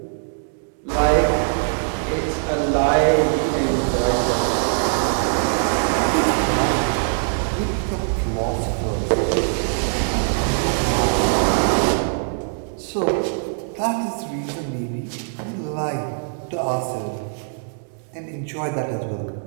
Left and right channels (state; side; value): silent; left; 64 dB below the other